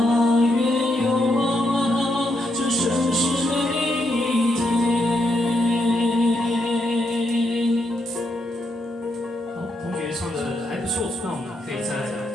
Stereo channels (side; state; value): both; normal; correlation 0.79